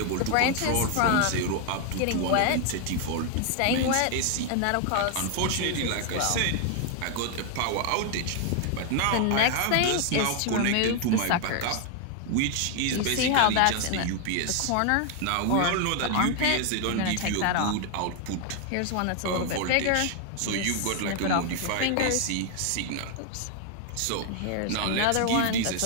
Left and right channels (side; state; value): both; different; correlation 0.00